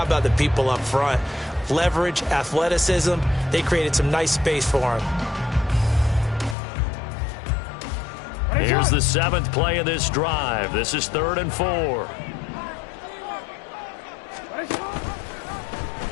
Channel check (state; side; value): drops out; right; at 6.6 s